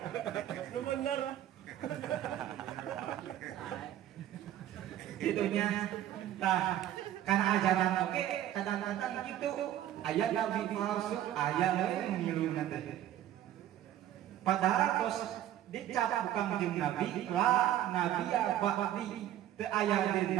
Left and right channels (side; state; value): left; quieter; 12.1 dB